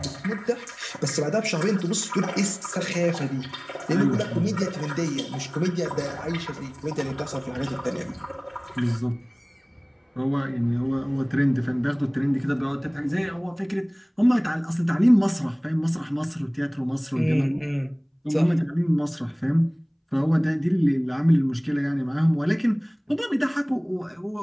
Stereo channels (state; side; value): identical; both; correlation 1.00